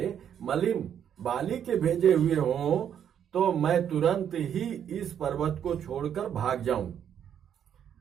मलिन बाली के भेजे हुए हों तो मैं तुरंत ही इस पर्वत को छोड़कर भाग जाऊं।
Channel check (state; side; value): quieter; left; 9.1 dB